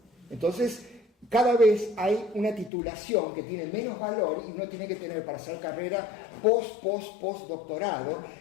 Entonces, cada vez hay una titulación que tiene menos valor y uno tiene que tener para hacer carrera postdoctorado,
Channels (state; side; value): drops out; right; at 2.7 s